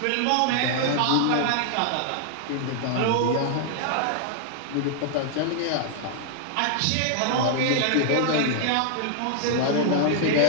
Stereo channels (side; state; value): both; different; correlation -0.01